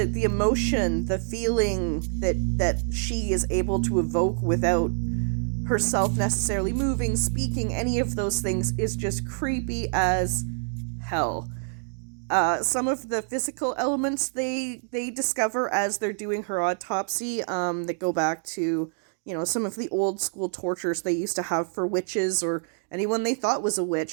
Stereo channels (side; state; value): left; silent; 61 dB below the other